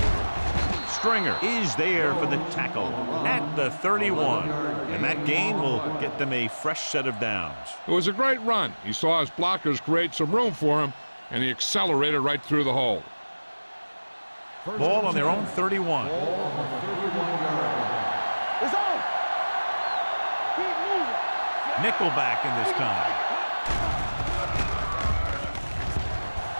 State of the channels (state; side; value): inverted; both; correlation -1.00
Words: Stringer is there for the tackle at the 31. And that gain will get them a fresh set of downs. It was a great run. He saw his blockers create some room for him, and he accelerated right through the hole. Ball on their own 31. Ball on the 31-yard line. It's on. Keep moving. Nickelback in this time.